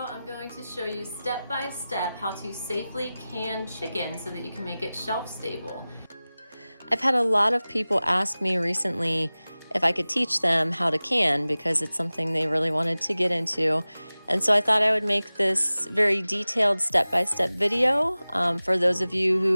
going to show you step by step how to safely can chicken so that you can make it shelf stable. I've had a lot of people ask me recently if I could teach them how to can because it's something they really wanted to get into. And so I thought I would make this very detailed step-by-step video for those of you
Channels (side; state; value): both; inverted; correlation -0.97